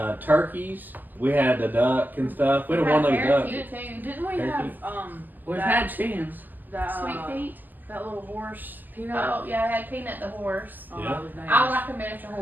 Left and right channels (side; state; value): left; late; 0.087 ms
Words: turkeys. We had the duck and stuff. We had a one-legged duck. Didn't we have We've had chickens. that Sweet Pete. that little horse Peanut? Oh yeah, I had Peanut the horse. Oh, Yeah. that was nice. I like a miniature